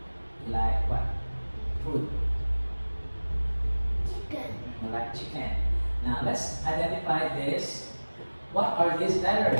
You like what? Food. Chicken. You like chicken. Now let's identify this. What are these letters?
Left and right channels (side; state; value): both; inverted; correlation -1.00